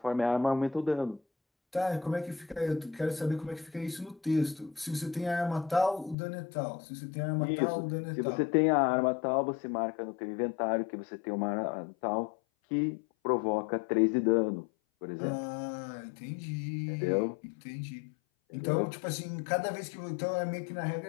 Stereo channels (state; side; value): drops out; right; at 6.2 s